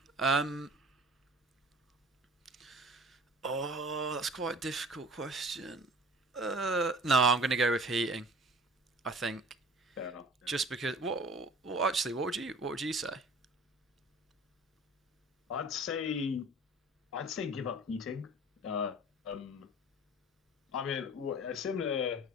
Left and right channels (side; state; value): both; normal; correlation 0.44